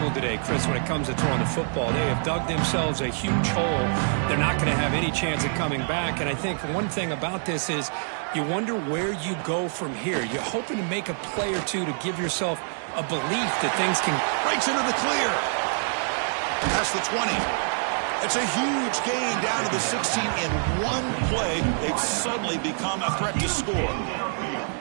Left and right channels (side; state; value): left; silent; digital silence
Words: today, Chris, when it comes to throwing the football. They have dug themselves a huge hole. They're not going to have any chance of coming back. And I think one thing about this is you wonder where you go from here. You're hoping to make a play or two to give yourself a belief that things can... Breaks into the clear. Past the 20. It's a huge gain down to the 16 in one play. They've suddenly become a threat to score.